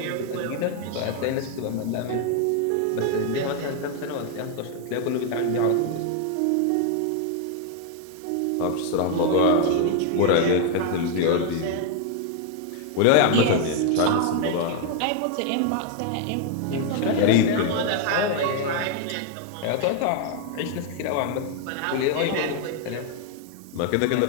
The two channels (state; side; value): different; both; correlation 0.00